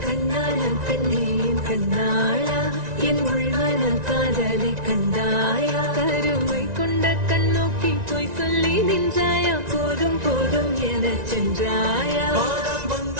கண்ணாளன் பெண்ணே என் கண்ணாளா என் உள்மனல் காதலை கண்டாயா கருமை கொண்ட கண்ணோக்கி போய் சொல்லி நின்றாயா போதும் போதும் என சென்றாயா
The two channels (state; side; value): late; left; 1.9 ms